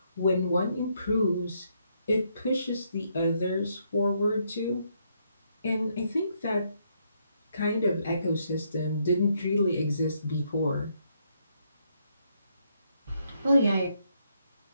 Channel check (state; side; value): inverted; both; correlation -0.75